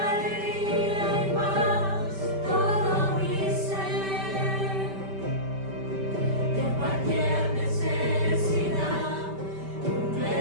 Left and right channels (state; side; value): late; left; 5.1 ms